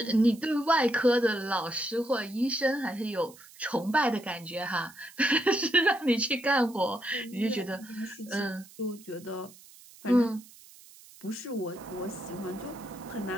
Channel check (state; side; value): noise; right; hiss, 22 dB below the sound